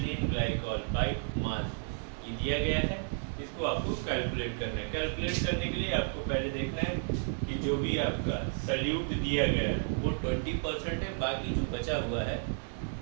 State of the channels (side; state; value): left; silent; 56 dB below the other